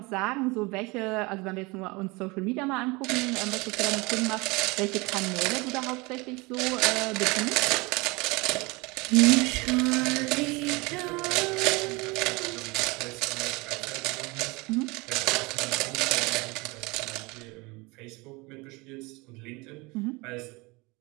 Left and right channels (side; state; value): left; quieter; 25.3 dB